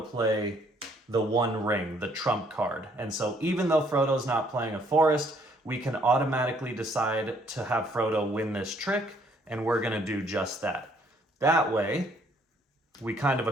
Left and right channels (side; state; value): both; normal; correlation 0.65